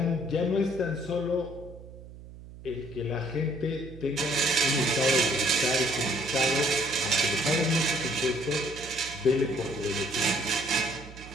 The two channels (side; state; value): right; noise; hum, 16 dB below the sound